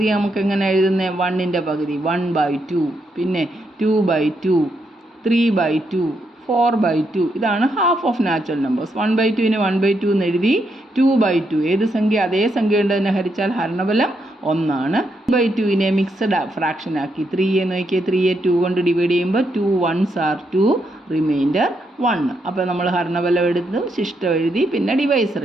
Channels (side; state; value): both; normal; correlation 0.79